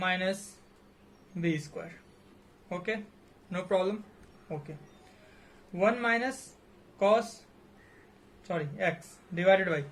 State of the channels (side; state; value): both; identical; correlation 1.00